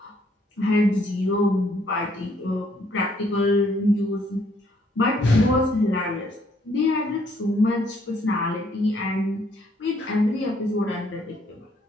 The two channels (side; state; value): both; normal; correlation 0.67